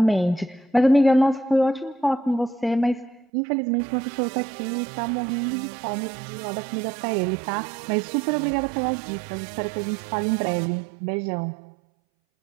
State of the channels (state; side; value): drops out; left; at 3.2 s